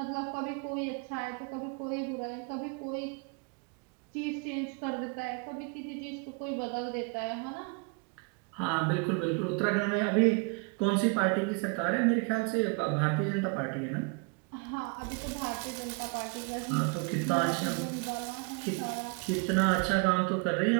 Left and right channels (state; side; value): quieter; left; 32.7 dB